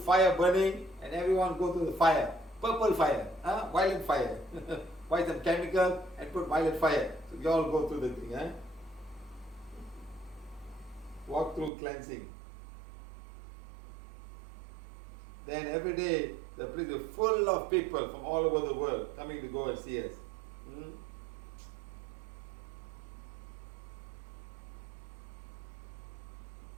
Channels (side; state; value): left; drops out; at 11.7 s